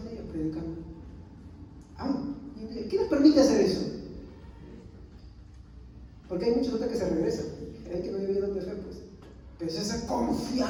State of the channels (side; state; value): both; identical; correlation 1.00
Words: ellos predicando. ¿Qué les permite hacer eso? Porque hay muchos otros que se regresan, hay que no viven de fe, pues. Pero es esa